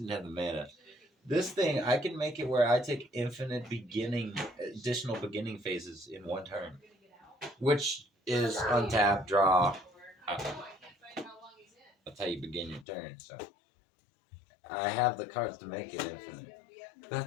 have the mana. This thing, I can make it where I take infinite additional beginning phases in 1 turn, which is untap, draw. That's how you begin your turn. So I have the cards to make it infinite.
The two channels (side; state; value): right; drops out; at 12.9 s